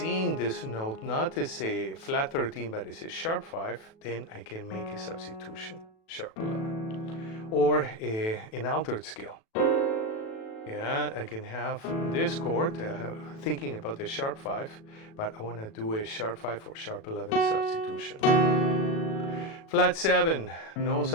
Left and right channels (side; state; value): right; late; 37 ms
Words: this note not as a flat 13 but as a sharp 5, then I can make a substitution, sharp 11, or an altered scale. Yeah, I can have this chord, thinking about the sharp 5, but I want to do a sharp 5 or sharp 11 substitution. Flat 7, no